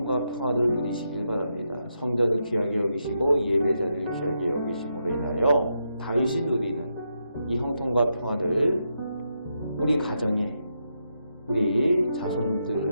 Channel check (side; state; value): both; inverted; correlation -0.82